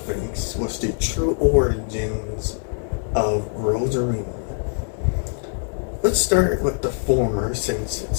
thinks was the true origins of Rosarina. Let's start with the former, since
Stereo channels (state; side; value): silent; right; digital silence